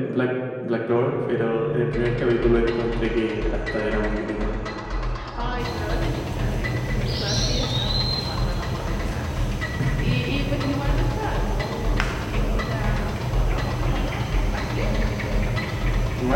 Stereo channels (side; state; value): both; identical; correlation 1.00